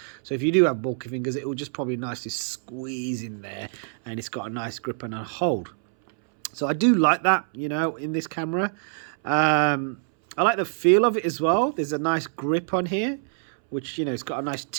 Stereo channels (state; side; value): silent; left; 62 dB below the other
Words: So if you do have bulky fingers, it will just probably nicely squeeze in there. And it's got a nice grip and a hold. So I do like that, you know, in this camera. I like the feel of it as well. There's a nice grip on here, which, you know, it's got a nice